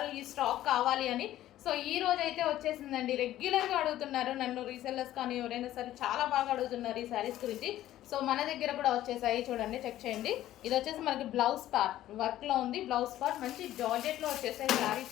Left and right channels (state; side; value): quieter; right; 13.6 dB